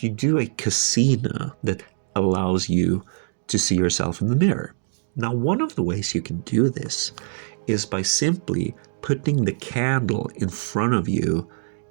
you do a casino that allows you to see yourself in the mirror. Now, one of the ways you can do this is by simply putting the candle in front of you,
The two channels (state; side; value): silent; left; digital silence